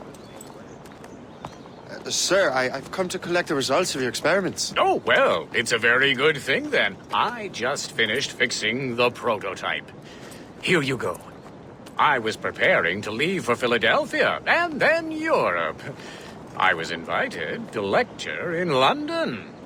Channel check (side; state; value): both; identical; correlation 1.00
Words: Sir, I've come to collect the results of your experiments. Oh, well, it's a very good thing then. I just finished fixing the prototype. Here you go. I was preparing to leave for Philadelphia and then Europe. I was invited to lecture in London.